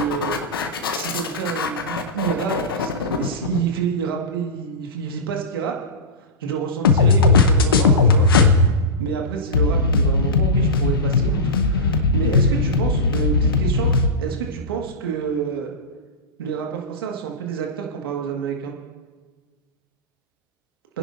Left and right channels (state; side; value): normal; both; correlation -0.19